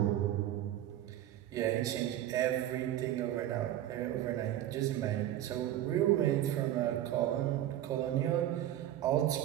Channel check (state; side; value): quieter; left; 12.7 dB